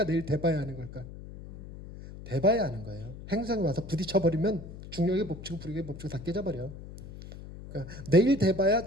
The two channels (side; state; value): left; noise; hum, 13 dB below the sound